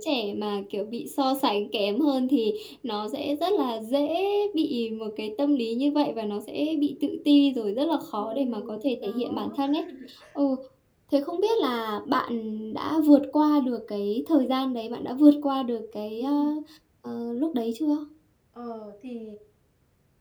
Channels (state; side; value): identical; both; correlation 1.00